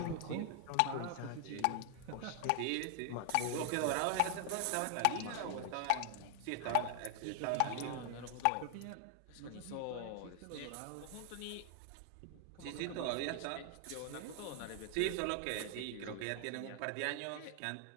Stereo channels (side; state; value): both; different; correlation 0.00